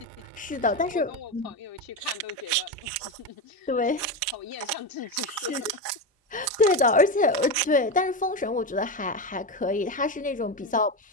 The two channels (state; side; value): normal; both; correlation 0.15